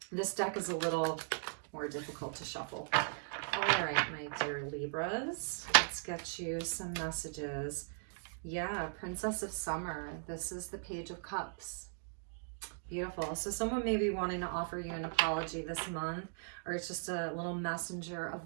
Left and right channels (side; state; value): left; silent; digital silence